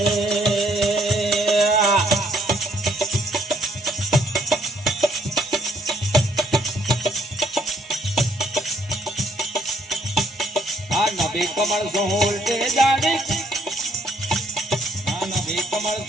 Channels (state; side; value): normal; both; correlation 0.67